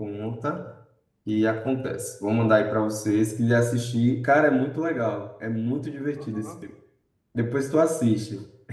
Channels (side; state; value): both; identical; correlation 1.00